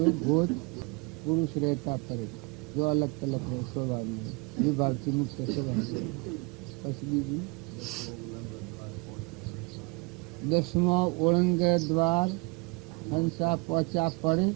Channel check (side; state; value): left; quieter; 29.1 dB